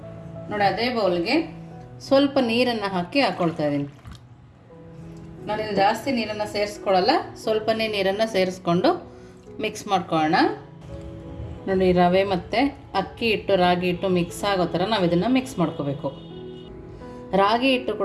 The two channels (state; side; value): identical; both; correlation 1.00